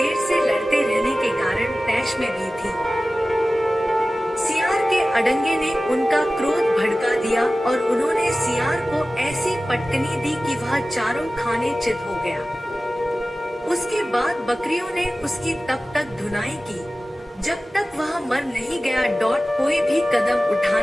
से लड़ते रहने के कारण तैश में भी थी। सियार के अडंगे ने उनका क्रोध भड़का दिया और उन्होंने सियार को ऐसी पटकनी दी कि वह चारों खाने चित हो गया। उसके बाद बकरियों ने उसकी तब तक धुनाई की जब तक वह मर नहीं गया। कोई भी कदम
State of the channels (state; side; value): normal; both; correlation 0.96